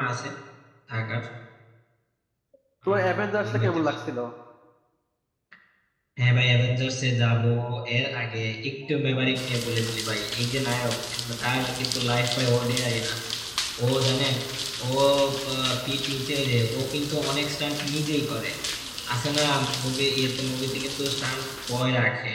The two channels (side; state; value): both; identical; correlation 1.00